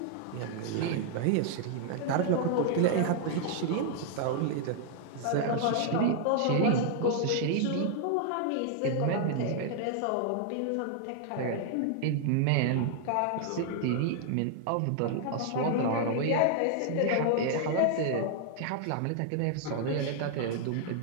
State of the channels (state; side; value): different; both; correlation -0.01